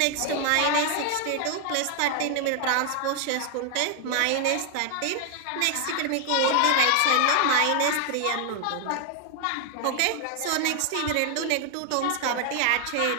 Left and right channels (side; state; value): both; different; correlation 0.00